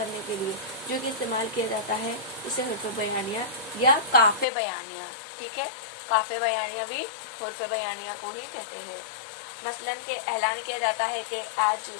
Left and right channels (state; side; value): drops out; right; at 4.5 s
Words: के लिए जो कि इस्तेमाल किया जाता है, इसे हुर्फ़ बयानिया या काफ़े बयानिया। ठीक है, काफ़े बयानिया भी हुर्फ़ बयानिया को ही कहते हैं। मसलन के ऐलान किया जाता है कि आज